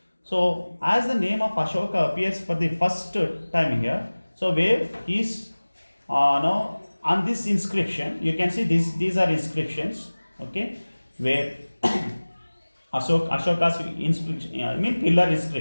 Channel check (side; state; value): both; inverted; correlation -1.00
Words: So as the name of Ashoka appears for the first time here, so where is on this inscription, you can see these are inscriptions, okay, where Ashoka's pillar